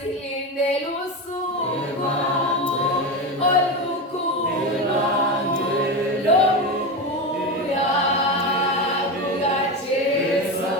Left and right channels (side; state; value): both; normal; correlation 0.19